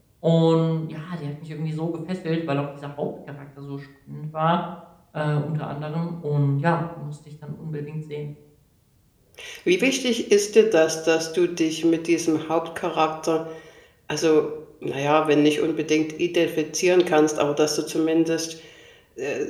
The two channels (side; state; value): both; identical; correlation 1.00